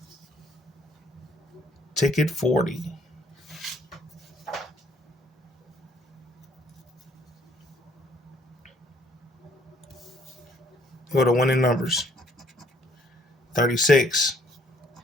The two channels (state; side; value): normal; both; correlation 0.63